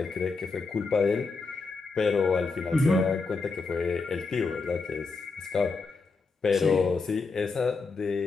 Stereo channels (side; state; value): right; quieter; 4.3 dB